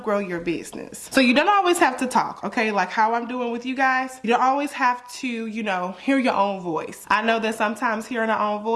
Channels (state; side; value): identical; both; correlation 1.00